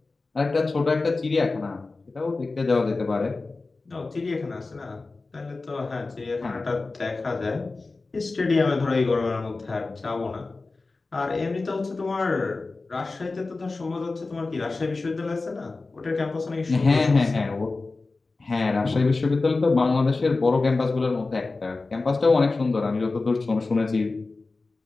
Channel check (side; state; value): right; quieter; 3.6 dB